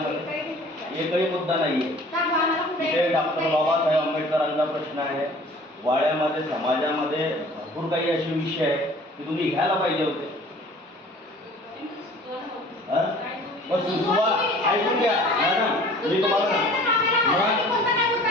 एकही मुद्दा नाहीये. तिथे डॉक्टर बाबासाहेब आंबेडकरांचा प्रश्न आहे. वाड्यामध्ये समाजामध्ये भरपूर काही असे विषय आहे की तुम्ही घ्यायला पाहिजे होते. सुचवा, ऐकून घ्या मॅडम, मी तुम्हाला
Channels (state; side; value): normal; both; correlation 0.48